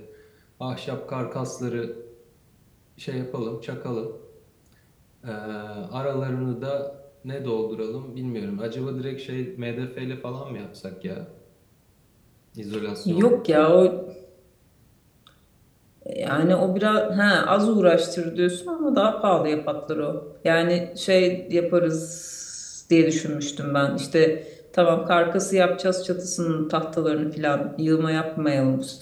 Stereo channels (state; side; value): identical; both; correlation 1.00